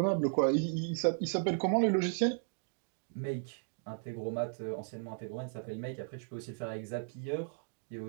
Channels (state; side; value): silent; left; digital silence